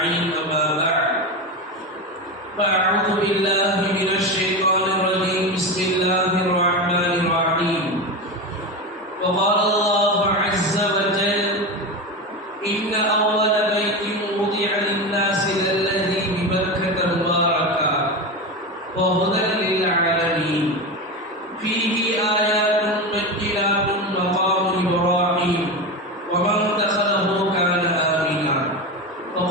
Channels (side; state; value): both; normal; correlation 0.20